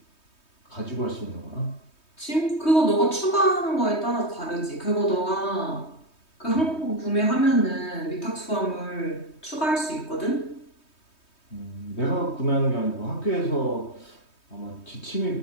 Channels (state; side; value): late; right; 3.2 ms